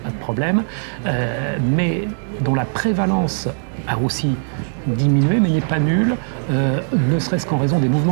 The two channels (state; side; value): silent; left; digital silence